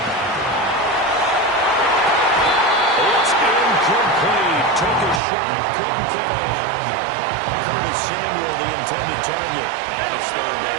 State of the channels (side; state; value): left; drops out; at 5.2 s